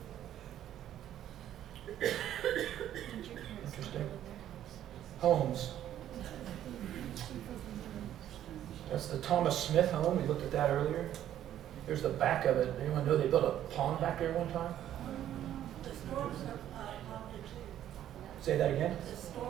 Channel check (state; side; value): quieter; left; 11.5 dB